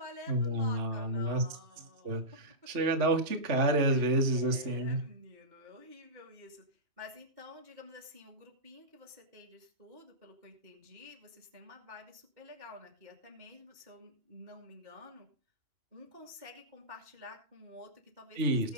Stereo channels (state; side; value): late; left; 3.3 ms